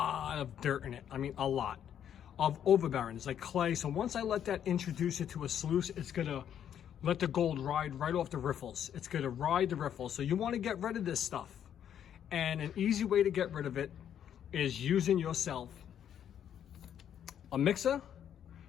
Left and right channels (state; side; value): quieter; right; 9.5 dB